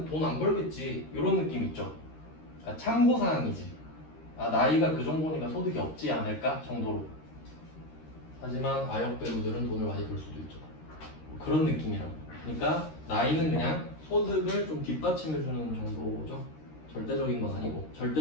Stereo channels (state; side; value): late; right; 13 ms